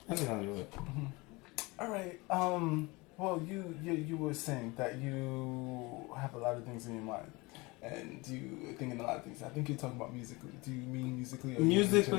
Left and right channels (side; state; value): right; quieter; 24.3 dB